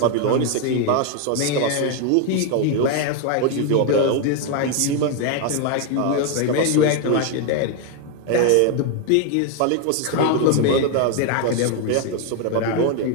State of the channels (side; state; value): both; different; correlation 0.01